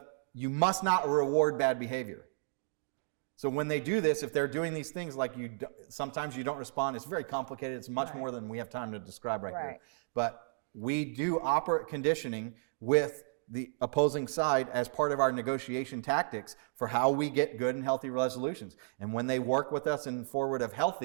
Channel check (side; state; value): left; silent; digital silence